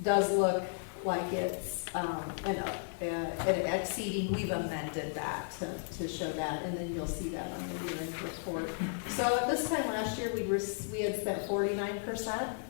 does look like it's exceeding, we've amended that to show that, and then you'll see that on the year-end report. So at this time last year, we had spent 49%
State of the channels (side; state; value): right; silent; digital silence